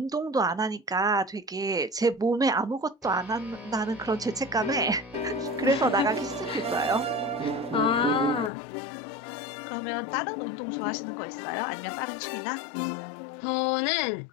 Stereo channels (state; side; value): drops out; right; at 8.5 s